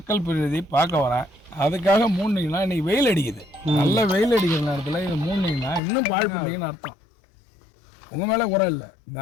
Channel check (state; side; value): drops out; right; at 5.8 s